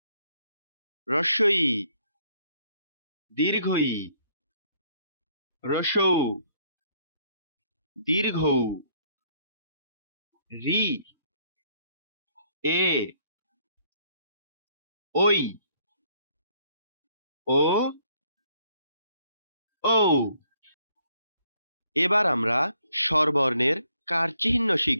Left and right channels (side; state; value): both; inverted; correlation -0.67